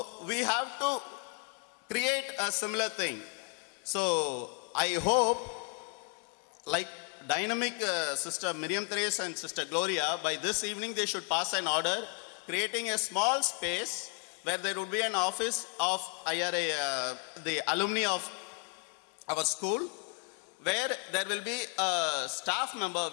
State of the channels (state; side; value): quieter; right; 36.3 dB